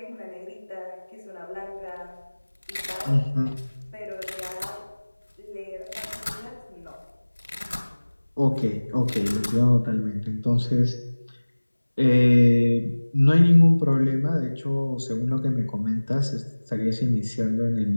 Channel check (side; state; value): both; inverted; correlation -1.00